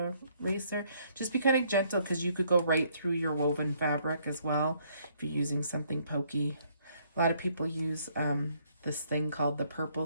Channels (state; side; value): inverted; both; correlation -0.66